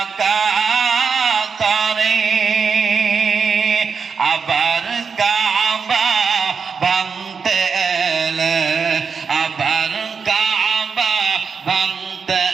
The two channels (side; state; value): left; quieter; 5.7 dB